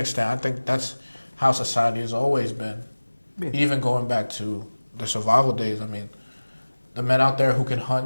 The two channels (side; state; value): both; inverted; correlation -1.00